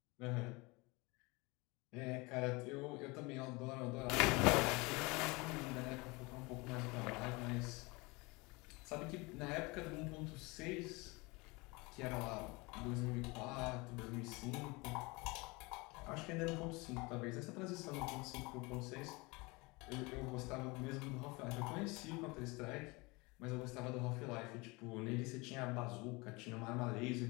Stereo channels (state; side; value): quieter; right; 25.4 dB